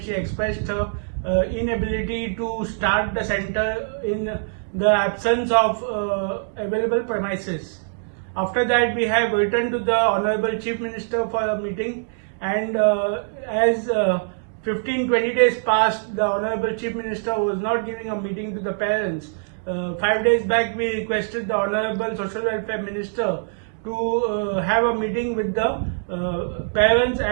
expressed her inability to start the center in the absence of available premises. After that, we have returned to the Honorable Chief Minister for a meeting, and as 15-20 days passed, the Honorable Chief Minister was not giving a meeting to the parents. 5 days back, we requested the Honorable Social Welfare Minister to have a meeting with the parents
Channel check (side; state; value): left; silent; digital silence